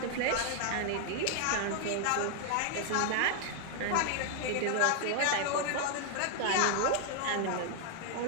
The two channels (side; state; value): both; different; correlation 0.00